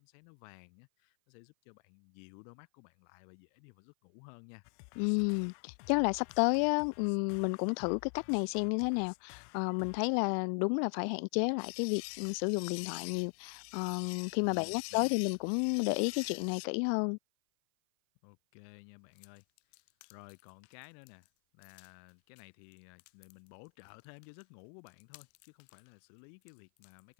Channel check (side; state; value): right; silent; 54 dB below the other